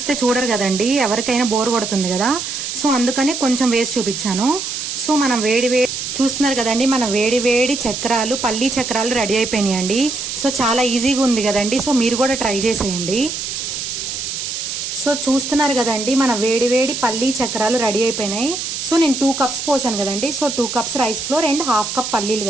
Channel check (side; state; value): right; noise; hiss, 5 dB below the sound